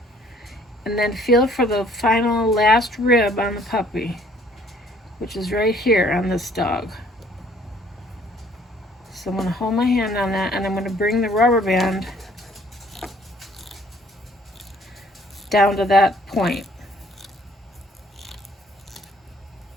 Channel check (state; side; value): normal; both; correlation 0.59